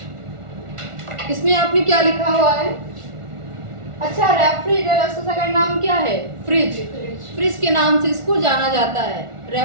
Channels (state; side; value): late; left; 1.4 ms